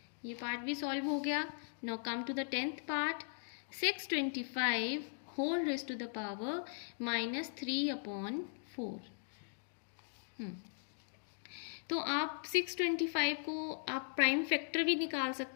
ये पार्ट भी सॉल्व हो गया। Now come to the 10th part, 625 whole raise to the power -3/4। तो आप 625 को आप प्राइम फैक्टर भी निकाल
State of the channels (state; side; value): silent; right; digital silence